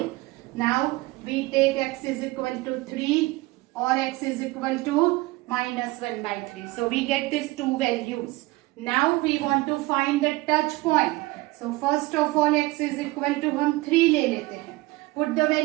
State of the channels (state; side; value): quieter; left; 21.1 dB